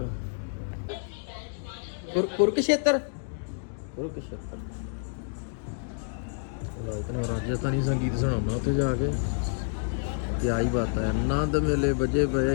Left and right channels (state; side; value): silent; right; digital silence